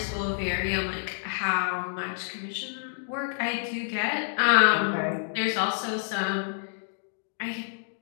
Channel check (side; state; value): right; silent; digital silence